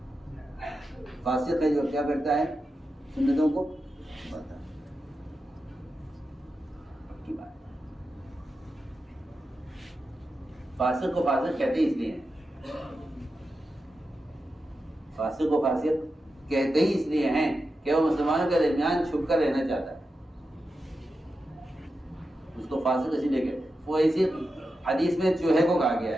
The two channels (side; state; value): both; normal; correlation 0.90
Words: فاسق ہے جو کیا کرتا ہے, سنتوں کو چھپاتا ہے. خود کی بات ہے. فاسق کو فاسق کہتے ہی اس لیے ہیں, فاسق کو فاسق کہتے ہی اس لیے ہیں کہ وہ مسلمانوں کے درمیان چھپ کر رہنا چاہتا ہے. اس کو فاسق اسی لیے کہتے ہیں. وہ اسی حدیث میں چوہے کو کہا گیا